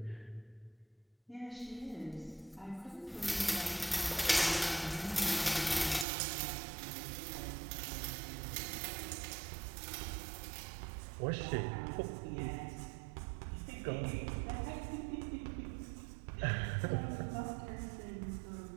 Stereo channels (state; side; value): drops out; left; at 6.1 s